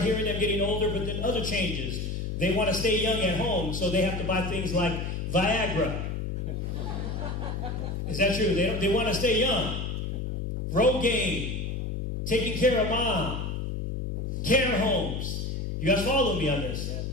hearing them getting older, but then other changes. They want to stay young at home, so they have to buy things like Viagra. Is that true? They want to stay young. Rogaine, taking care of mom, care homes. You guys follow me on this?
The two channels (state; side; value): noise; left; hum, 3 dB below the sound